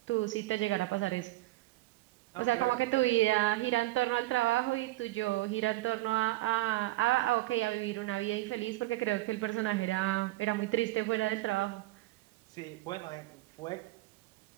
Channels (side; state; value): left; quieter; 18.3 dB